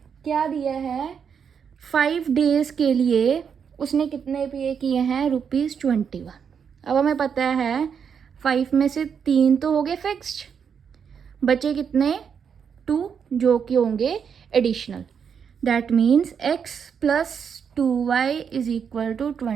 क्या दिया है 5 days के लिए उसने कितने पे किए हैं ₹21. अब हमें पता है 5 में से 3 तो हो गए फिक्स्ड, बचे कितने 2 जो कि होंगे additional. That means x plus 2y is equal to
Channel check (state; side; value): quieter; left; 7.0 dB